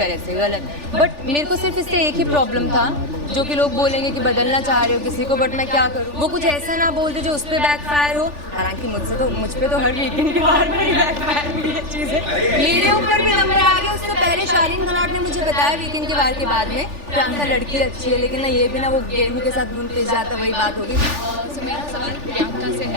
ऐसे, गलत। बट मेरे को सिर्फ इससे एक ही प्रॉब्लम था, जो कि लोग बोलेंगे कि बदलना चाह रहे हो किसी को, बट मैं क्या करूँ, वो कुछ ऐसा ना बोल दे जो उस पर बैकफायर हो। हालांकि मुझ पे तो हर वीकेंड के बार पर ही बैकफायर हुई है चीज़ें। मेरे ऊपर भी नंबर आ गया। उससे पहले शालीन खनौट ने मुझे बताया वीकेंड के बार के बाद में, प्रियंका लड़की अच्छी है, लेकिन ना ये भी ना वो गेहूं के साथ घुन पिस जाता, वही बात होगी। सो मेरा सवाल प्रियंका से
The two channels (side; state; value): left; late; 3.4 ms